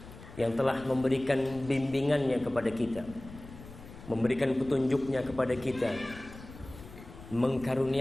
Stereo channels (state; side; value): noise; left; rumble, 16 dB below the sound